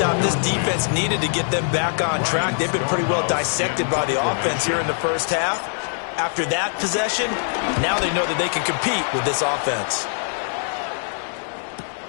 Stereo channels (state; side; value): silent; right; 64 dB below the other